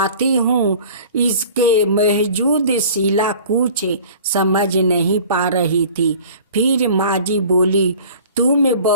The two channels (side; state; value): both; inverted; correlation -0.45